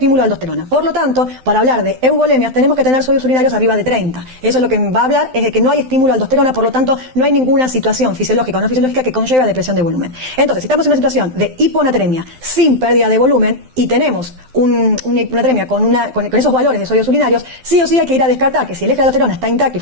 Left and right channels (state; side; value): late; left; 12 ms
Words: a aldosterona. Por lo tanto, para hablar de euvolemias tenemos que tener sodios urinarios arriba de 30. Eso es lo que va a hablar, es de que no hay estímulo a aldosterona, por lo tanto, no hay ninguna situación fisiológica o no fisiológica que conlleve a depresión de volumen. Entonces, si estamos en una situación de hiponatremia sin pérdida de volumen y tenemos una hiponatremia con esos valores de sodios urinarios, sí o sí hay que ir a descartar que si el eje de la aldosterona está intacto y